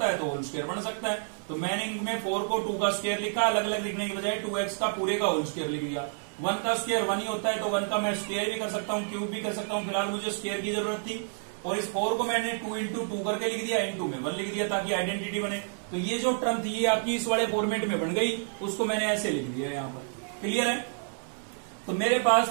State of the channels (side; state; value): left; silent; digital silence